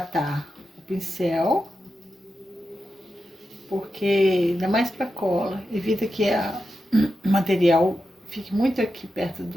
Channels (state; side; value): normal; both; correlation 0.89